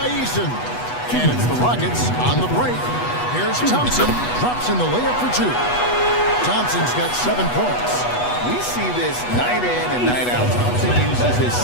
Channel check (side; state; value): right; late; 8.2 ms